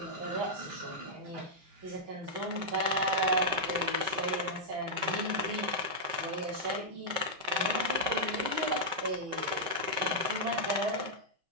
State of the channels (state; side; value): late; left; 5.4 ms